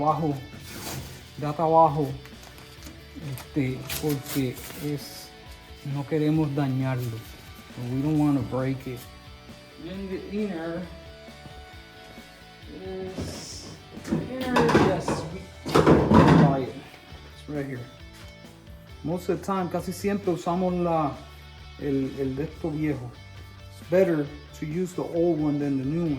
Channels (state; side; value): identical; both; correlation 1.00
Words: Da trabajo. Porque no queremos dañarlo. So we don't want to break it. Then the inner is. Yes, we buy it. It's right here. Most of the time, casi siempre usamos el de esto viejo. It's better to use the old one than the new